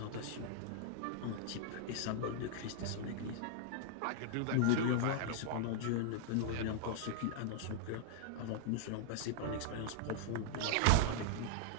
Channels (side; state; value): both; different; correlation 0.00